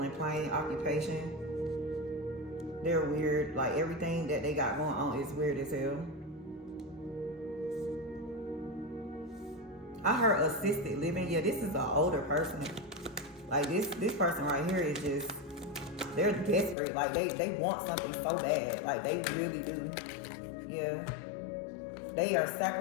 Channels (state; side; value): drops out; right; at 16.8 s